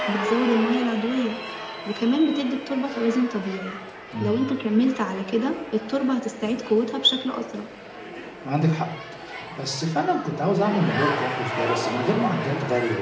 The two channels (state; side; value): identical; both; correlation 1.00